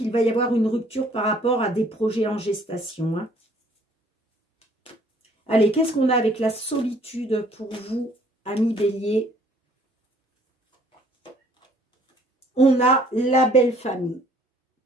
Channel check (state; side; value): normal; both; correlation 0.59